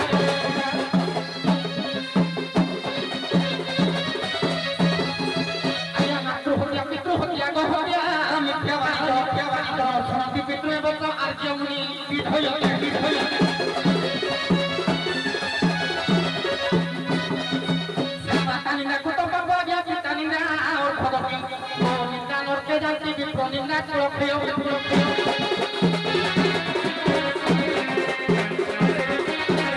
ଆଜ୍ଞା ମାତୃହତ୍ୟା ପିତୃହତ୍ୟା ଗହତ୍ୟା ମିଥ୍ୟାବାଦ ଶୁଣନ୍ତି ପିତୃ ଏବଂ ଆର୍ଯ୍ୟମୁନି ବିଧୟ নিন্দা কত পাবো আজ্ঞা পিতা নিন্দা ভগবতী ও নিন্দা নরকে যাইতে বিপ্র নিন্দা প্রক্ষেয়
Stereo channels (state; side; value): identical; both; correlation 1.00